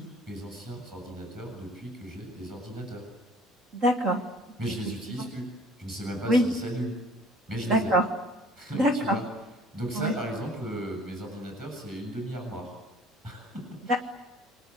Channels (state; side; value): normal; both; correlation 0.53